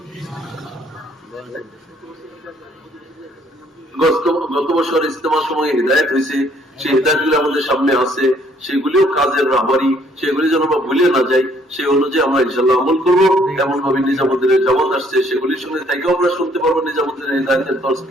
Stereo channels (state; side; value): normal; both; correlation 0.64